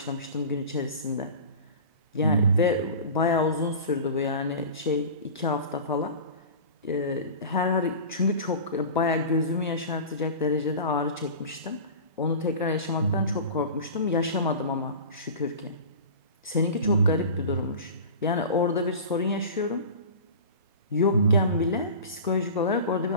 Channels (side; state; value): both; inverted; correlation -0.35